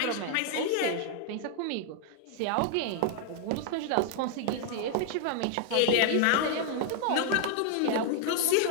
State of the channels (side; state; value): both; different; correlation 0.00